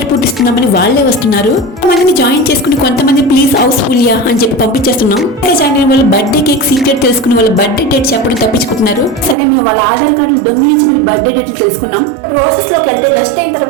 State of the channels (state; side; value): drops out; left; at 9.3 s